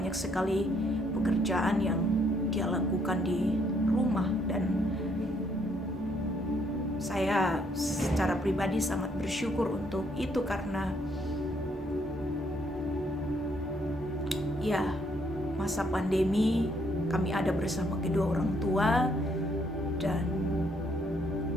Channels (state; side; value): normal; both; correlation 0.70